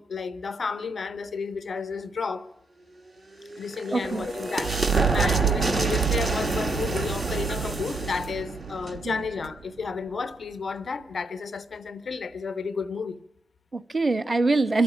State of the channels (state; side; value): normal; both; correlation 0.78